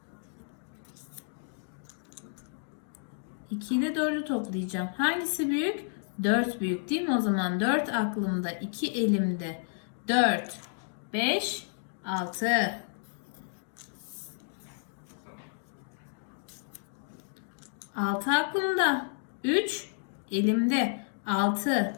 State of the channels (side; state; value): right; silent; digital silence